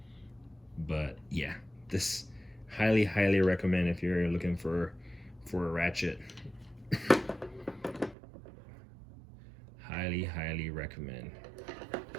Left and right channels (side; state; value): left; drops out; at 8.2 s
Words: But yeah, this highly recommend if you're looking for a ratchet. highly recommend.